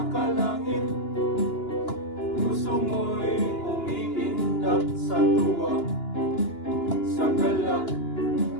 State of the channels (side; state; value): right; late; 2.9 ms